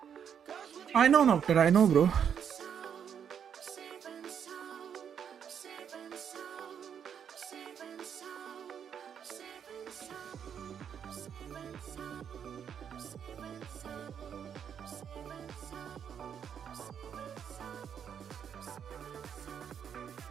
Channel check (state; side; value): quieter; left; 8.1 dB